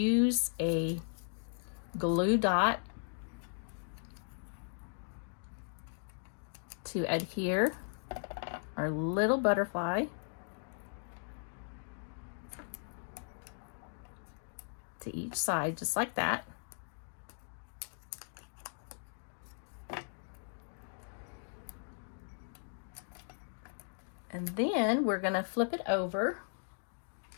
a glue dot to adhere our little butterfly to each side, just like that. And then we're going to flip it over,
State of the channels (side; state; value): right; silent; digital silence